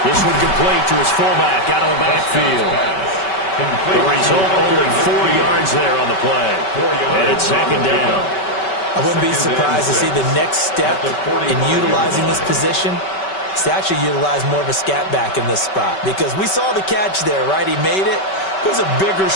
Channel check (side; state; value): right; late; 5.2 ms